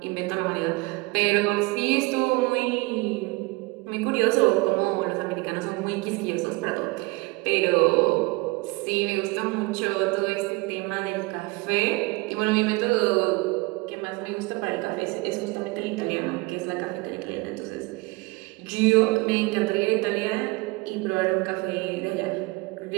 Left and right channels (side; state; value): left; quieter; 24.3 dB